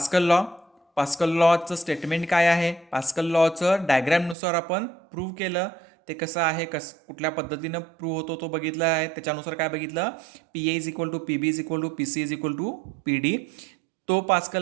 लॉचं स्टेटमेंट काय आहे, पास्कल लॉचं डायग्रॅमनुसार आपण प्रूव्ह केलं, ते कसं आहे, कुठल्या पद्धतीनं प्रूव्ह होतो तो बघितला आहे. त्याच्यानुसार काय बघितलं, PA is equal to PB is equal to PC is equal to PD. तो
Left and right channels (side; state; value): left; drops out; at 4.4 s